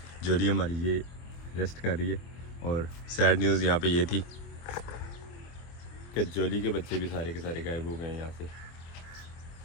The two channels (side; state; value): right; late; 24 ms